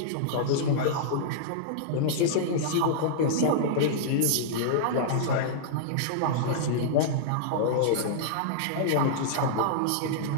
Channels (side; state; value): both; different; correlation -0.02